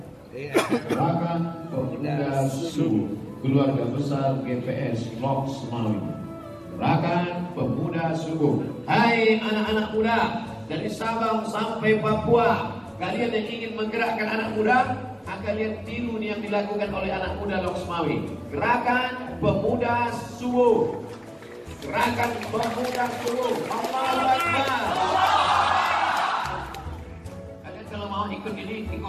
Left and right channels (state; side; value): identical; both; correlation 1.00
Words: Gerakan Pemuda Subuh Keluarga Besar GPS Lok Semawi. Gerakan Pemuda Subuh. Hai anak-anak muda dari Sabang sampai Papua, kalian yang ingin menggerakkan anak muda, akan lihat tiru yang dilakukan oleh anak muda Lok Semawi. Gerakan Pemuda Subuh. Gerakan Pemuda Subuh. Allahu Akbar. Kalian kalau mau ikut ini,